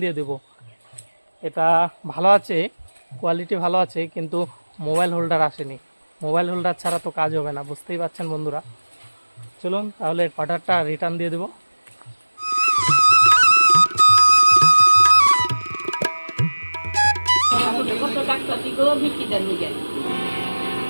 দিয়ে দেব। এটা ভালো আছে, কোয়ালিটি ভালো আছে, কিন্তু মোবাইল হোল্ডার আসেনি। মোবাইল হোল্ডার ছাড়া তো কাজ হবে না, বুঝতেই পারছেন বন্ধুরা। চলুন তাহলে অর্ডারটা রিটার্ন দিয়ে দেবো।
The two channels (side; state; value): both; inverted; correlation -1.00